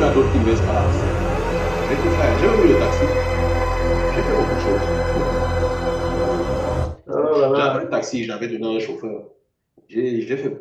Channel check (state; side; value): identical; both; correlation 1.00